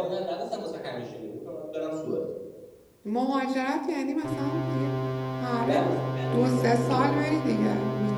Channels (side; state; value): both; identical; correlation 1.00